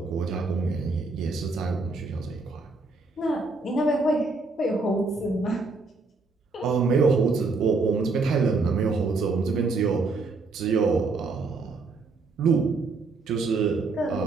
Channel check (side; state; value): left; quieter; 3.8 dB